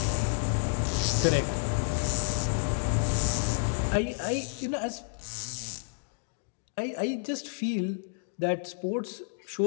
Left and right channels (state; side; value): silent; right; digital silence